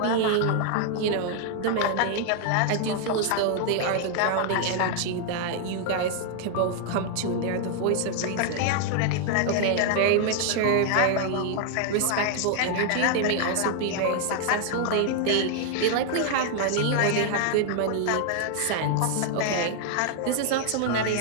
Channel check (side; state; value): both; different; correlation 0.00